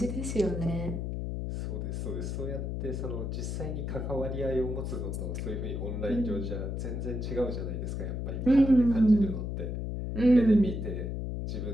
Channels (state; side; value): noise; left; hum, 3 dB below the sound